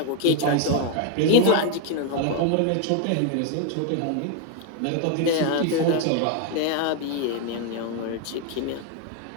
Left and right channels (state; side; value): different; both; correlation 0.01